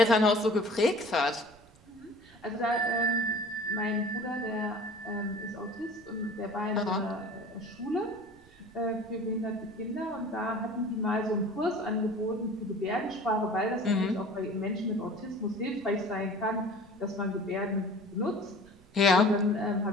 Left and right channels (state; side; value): noise; right; rumble, 27 dB below the sound